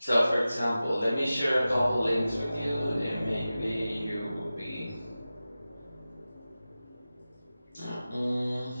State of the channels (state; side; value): inverted; both; correlation -0.95